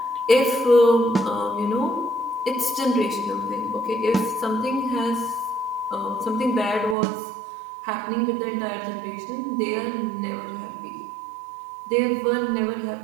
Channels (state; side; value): drops out; left; at 7.0 s